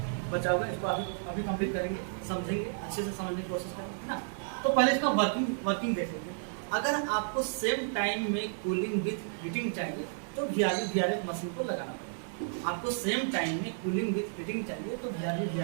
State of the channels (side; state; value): left; silent; digital silence